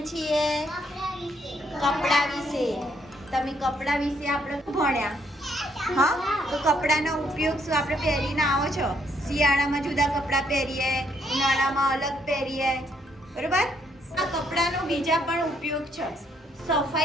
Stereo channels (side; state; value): both; normal; correlation 0.71